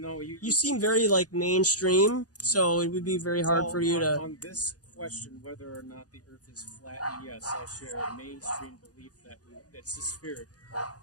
you seem very, mainstream, so it would be very hard for you to... On this question, whether or not the Earth is flat, yes, I share a mainstream belief that it's a sphere,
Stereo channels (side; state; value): right; late; 0.68 ms